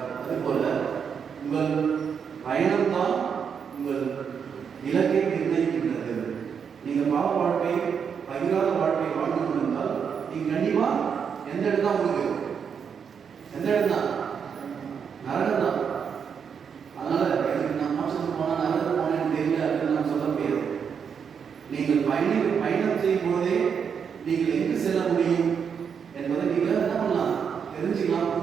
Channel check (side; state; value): left; quieter; 6.9 dB